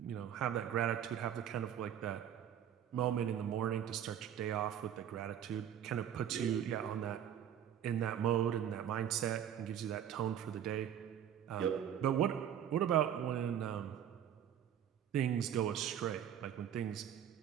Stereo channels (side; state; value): left; quieter; 9.7 dB